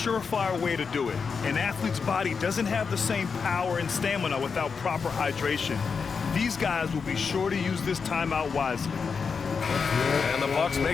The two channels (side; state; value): right; quieter; 5.5 dB